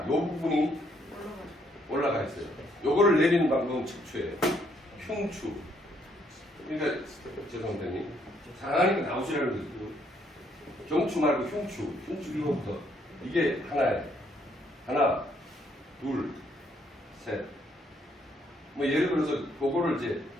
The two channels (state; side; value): normal; both; correlation 0.70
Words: 이 부분이 올라가 있어요. 요거를 내리는 방법은 척추예요. 흉추. 그러니까 죄송합니다. 상하니까 나오시라는 거죠. 경추 말고 흉추. 흉추 이거부터. 이게 하나예요. 하나, 둘, 셋. 뭐 예를 들어서 그거를 이제